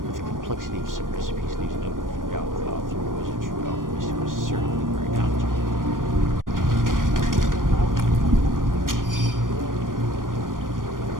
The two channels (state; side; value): late; left; 0.90 ms